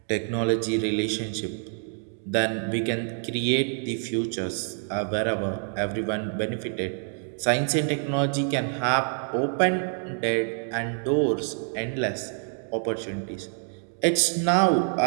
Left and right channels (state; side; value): silent; left; 60 dB below the other